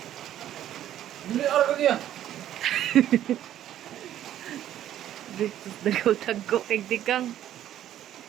Hindi, araw ko niya. Dito nagaw-tago kay dikang.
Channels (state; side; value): quieter; left; 11.8 dB